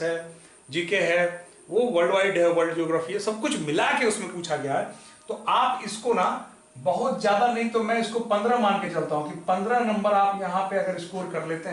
है, जीके है, वो वर्ल्ड वाइड है, वर्ल्ड ज्योग्राफी है, सब कुछ मिला के उसमें पूछा गया है। तो आप इसको ना बहुत ज्यादा नहीं तो मैं इसको 15 मान के चलता हूं कि 15 नंबर आप यहां पे अगर स्कोर कर लेते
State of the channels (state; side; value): identical; both; correlation 1.00